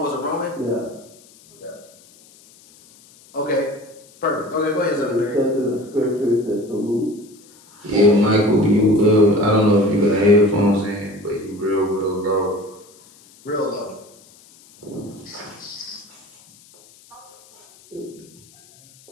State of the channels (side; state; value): left; noise; hiss, 26 dB below the sound